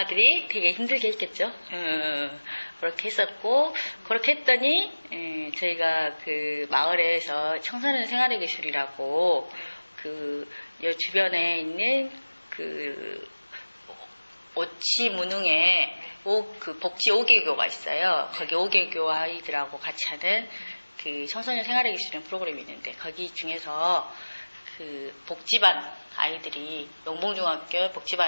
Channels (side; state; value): both; inverted; correlation -1.00